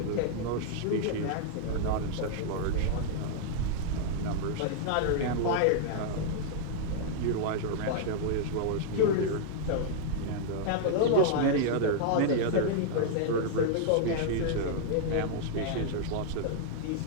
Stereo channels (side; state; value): both; different; correlation -0.01